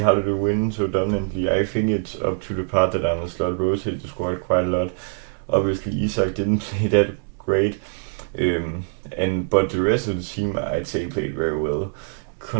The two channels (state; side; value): silent; left; 63 dB below the other